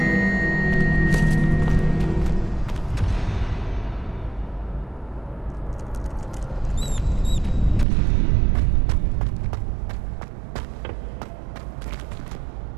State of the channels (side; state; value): left; drops out; at 7.9 s